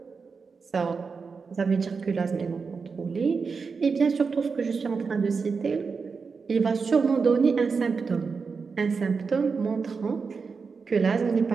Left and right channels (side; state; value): left; quieter; 5.1 dB